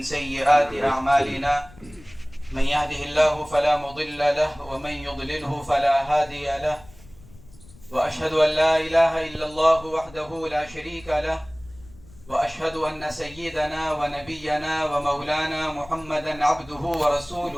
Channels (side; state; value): left; noise; rumble, 22 dB below the sound